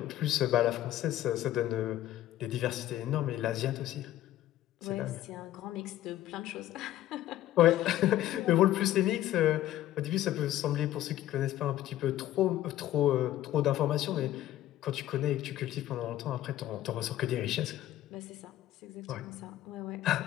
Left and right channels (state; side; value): quieter; right; 13.5 dB